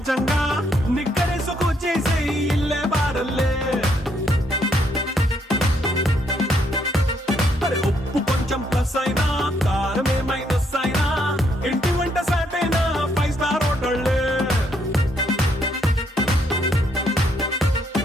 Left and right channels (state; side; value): normal; both; correlation 0.73